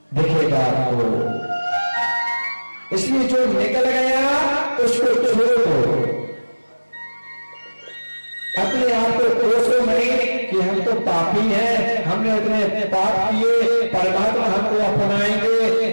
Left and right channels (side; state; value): both; inverted; correlation -1.00